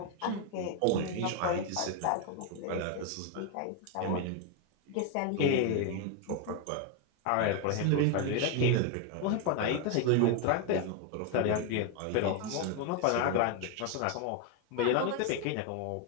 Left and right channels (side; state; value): both; different; correlation 0.01